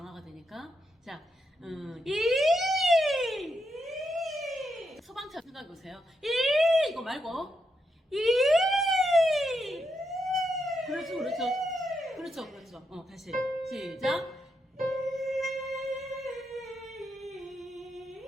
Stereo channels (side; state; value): both; normal; correlation 0.82